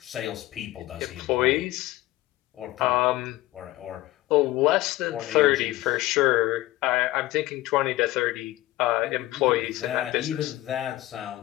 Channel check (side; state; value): right; quieter; 17.1 dB